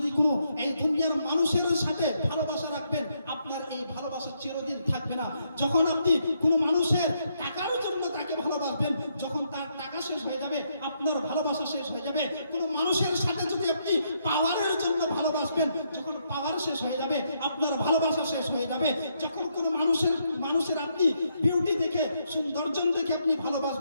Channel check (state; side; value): inverted; both; correlation -0.76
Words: কোনো এই দুনিয়ার মানুষের সাথে ভালোবাসা রাখবেন, আপনার এই ভালোবাসা চিরদিন থাকবে না। যখন আপনি কোনো মানুষের টাকার জন্য তাকে ভালোবাসবেন, যখন তার টাকা শেষ হয়ে যাবে আপনার ভালোবাসা শেষ হয়ে যাবে। কোনো মানুষের সাথে যদি আপনি পাওয়ারের জন্য ভালোবাসবেন, যখন পাওয়ার শেষ হয়ে যাবে আপনার ভালোবাসা শেষ হয়ে যাবে। যখন কোনো মানুষের আপনি বিউটি দেখে, সৌন্দর্য দেখে আপনি